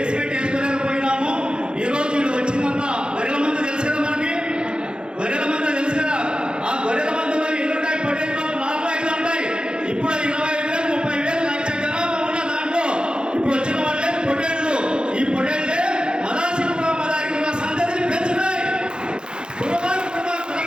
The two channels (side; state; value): left; late; 0.049 ms